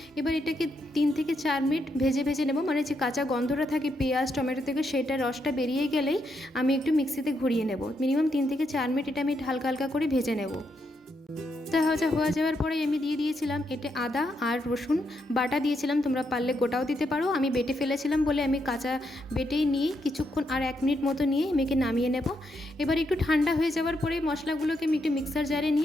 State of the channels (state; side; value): normal; both; correlation 0.80